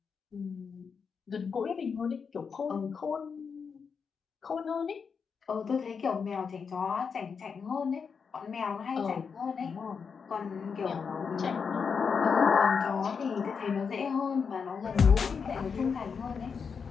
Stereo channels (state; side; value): quieter; right; 5.9 dB